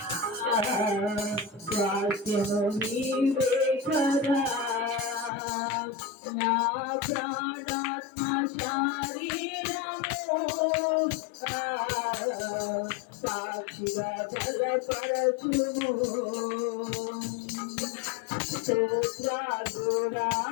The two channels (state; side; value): drops out; right; at 5.3 s